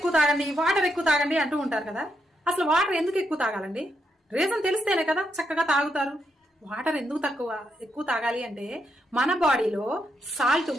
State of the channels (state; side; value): normal; both; correlation 0.80